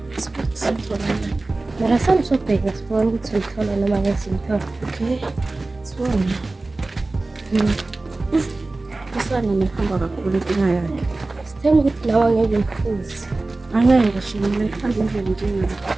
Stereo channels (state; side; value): quieter; left; 3.2 dB